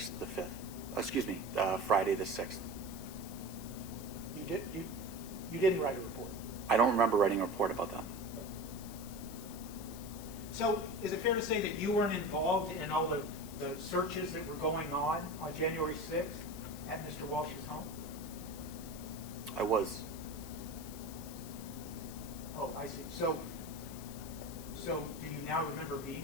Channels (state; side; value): noise; left; hiss, 14 dB below the sound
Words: the 5th. Excuse me, Friday the 6th. You didn't write a report. I don't remember writing a report about that. So is it fair to say that you weren't involved in all the searches that were going on January 6th at Mr. Walsh's home? I was. Oh, I see. So do you now remember